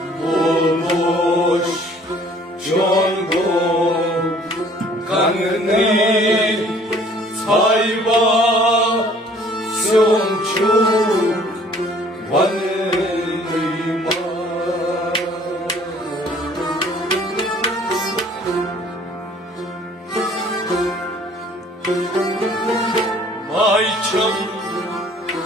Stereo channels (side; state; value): both; normal; correlation 0.56